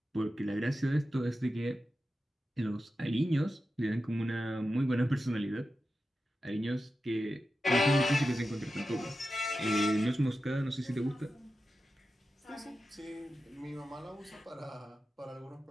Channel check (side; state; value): both; normal; correlation 0.92